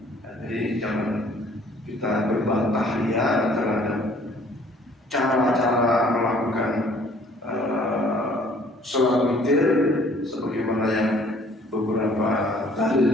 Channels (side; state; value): both; normal; correlation 0.57